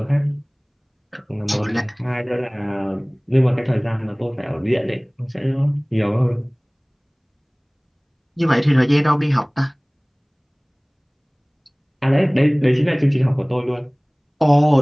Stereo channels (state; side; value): identical; both; correlation 1.00